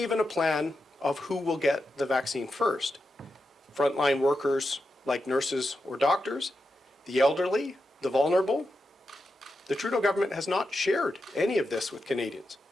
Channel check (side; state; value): both; normal; correlation 0.88